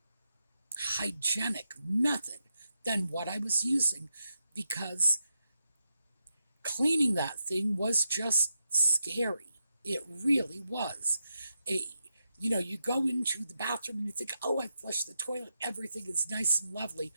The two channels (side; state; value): both; inverted; correlation -0.85